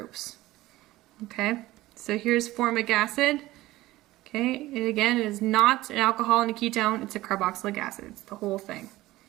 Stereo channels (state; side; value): quieter; left; 17.3 dB